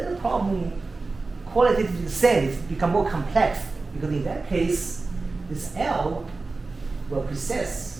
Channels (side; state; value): left; quieter; 3.7 dB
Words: the problem qualitatively the same, it's become more complex because in that case, this L will